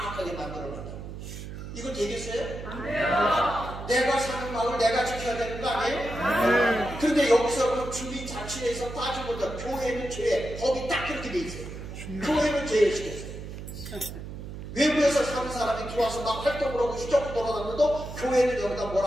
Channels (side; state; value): right; noise; hum, 10 dB below the sound